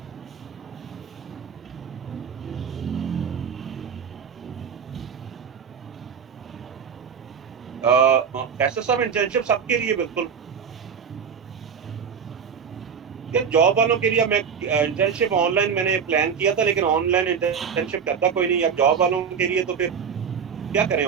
कैसे सब इंटर्नशिप सबके लिए बिल्कुल। यार जॉब वालों के लिए मैं इंटर्नशिप ऑनलाइन मैंने प्लान किया था, लेकिन ऑनलाइन इंटर्नशिप करता कोई नहीं। अब जॉब वालों के लिए तो फिर क्या करें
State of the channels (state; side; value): quieter; left; 6.8 dB